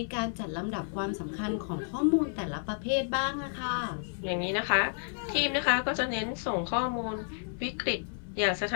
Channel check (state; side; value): silent; right; 57 dB below the other